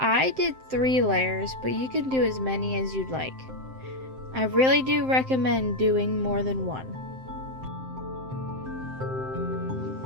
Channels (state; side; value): late; left; 7.7 ms